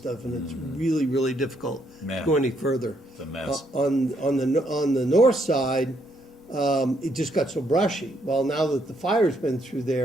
and it's really, really difficult to go any further. It's a mess. On the north side, it just got so brushy. Well, now that the fire's been through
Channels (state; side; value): normal; both; correlation 0.73